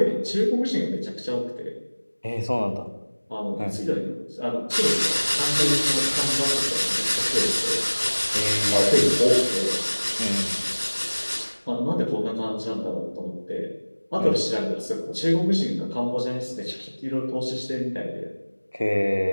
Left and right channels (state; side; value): inverted; both; correlation -1.00